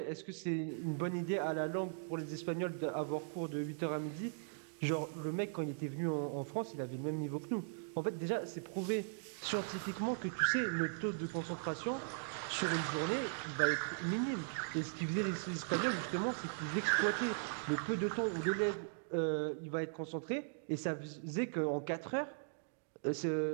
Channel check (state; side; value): silent; left; digital silence